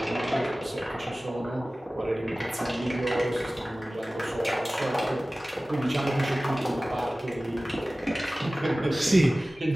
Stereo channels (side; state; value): both; normal; correlation 0.97